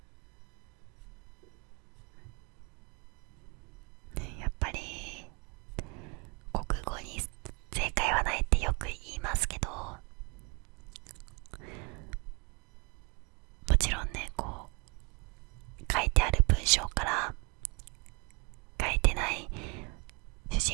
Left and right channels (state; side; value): quieter; left; 31.8 dB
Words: やっぱり国語に正解はないってよく言いますけど、もちろんねこう書いてある文章から書いてない主